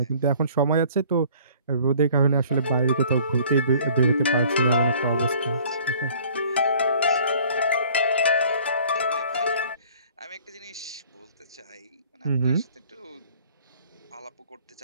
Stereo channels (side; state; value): both; inverted; correlation -0.53